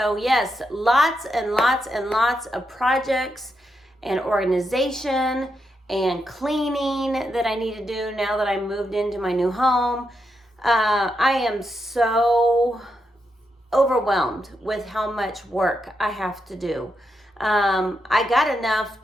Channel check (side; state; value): both; normal; correlation 0.83